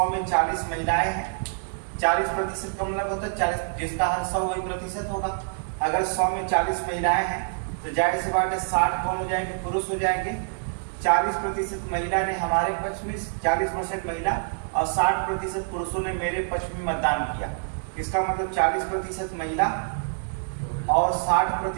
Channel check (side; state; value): left; silent; 61 dB below the other